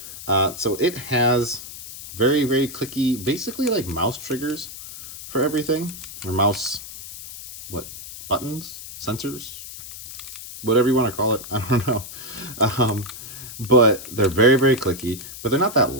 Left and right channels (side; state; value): left; noise; hiss, 12 dB below the sound